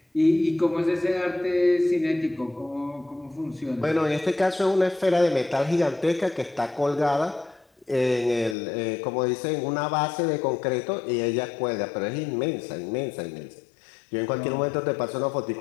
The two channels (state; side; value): drops out; right; at 8.6 s